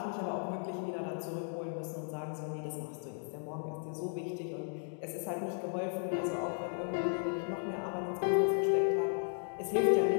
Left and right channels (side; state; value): right; silent; 54 dB below the other